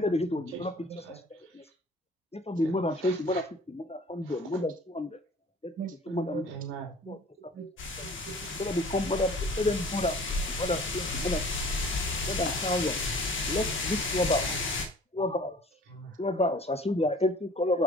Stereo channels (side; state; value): both; normal; correlation 0.48